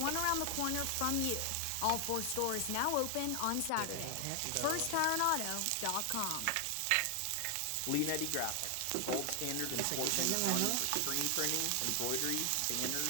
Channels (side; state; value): both; different; correlation 0.00